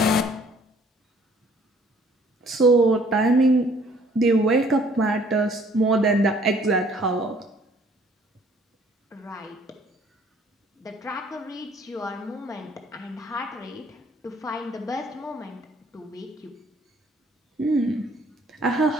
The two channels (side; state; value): both; normal; correlation 0.59